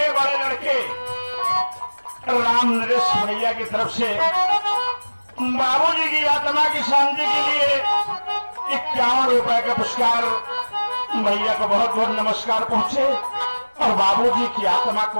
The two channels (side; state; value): both; inverted; correlation -1.00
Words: बड़े लड़के राम नरेश भैया की तरफ से बाबूजी की आत्मा की शांति के लिए 51 रुपए का पुरस्कार भैया को बहुत बहुत नमस्कार पहुंचे और बाबूजी की आत्मा